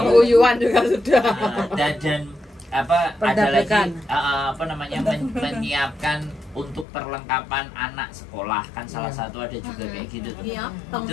juga sudah. dan apa ada lagi Perdagangan. apa namanya menyiapkan untuk perlengkapan anak sekolah kan salah satu ada juga kayak gitu tuh. Iya.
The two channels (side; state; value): right; drops out; at 6.9 s